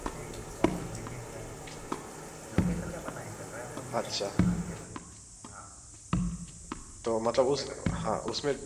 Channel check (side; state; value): both; identical; correlation 1.00